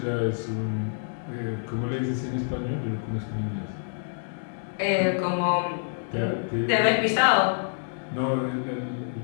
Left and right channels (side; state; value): right; silent; 60 dB below the other